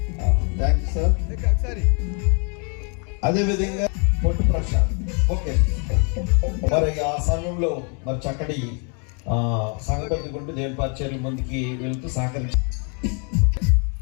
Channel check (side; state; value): right; quieter; 37.6 dB